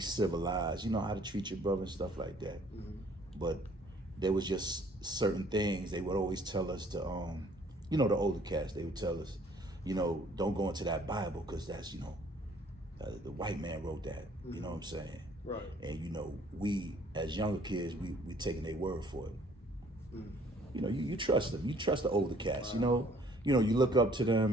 you know, how to treat your brother and stuff like that. But there was just certain things they would always tell us to, you know, the older cats, they would tell us, you know, don't go into that Bible because that's, you know, the white man wrote that, you know what I'm saying? Right. And, you know, we as younger kids, we taking their word for it. You know, you trust them. You trust the older cats, you know, you look up to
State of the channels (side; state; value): both; normal; correlation 0.58